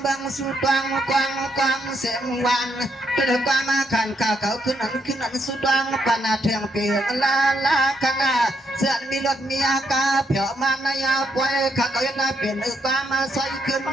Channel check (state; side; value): normal; both; correlation 0.77